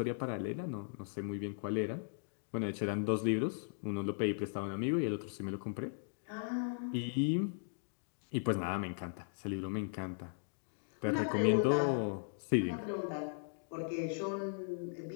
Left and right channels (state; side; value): silent; right; digital silence